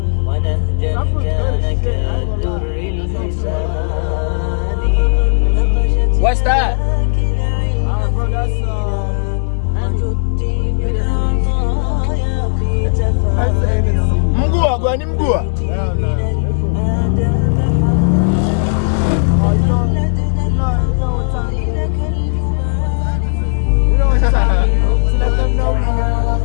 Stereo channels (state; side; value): silent; right; digital silence